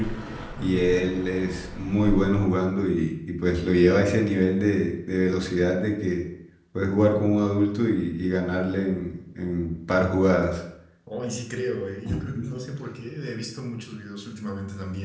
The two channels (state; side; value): identical; both; correlation 1.00